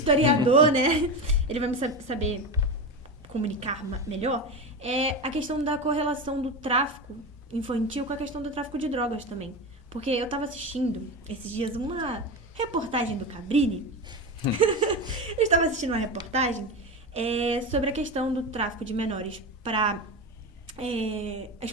né, ele vai me saber comunicar melhor, é a questão da correlação do tráfico infantil com a questão do tráfico de drogas também. Porque eu tava assistindo esses dias uma reportagem do Cabrini. Eu estava assistindo uma reportagem sobre a questão do tráfico de menores para a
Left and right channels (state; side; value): normal; both; correlation 0.21